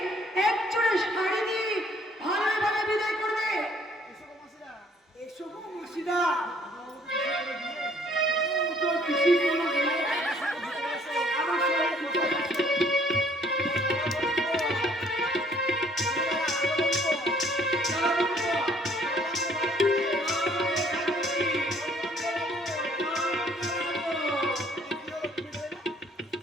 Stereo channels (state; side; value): normal; both; correlation 0.61